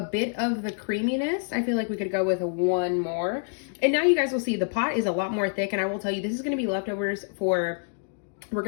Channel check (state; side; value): silent; right; 60 dB below the other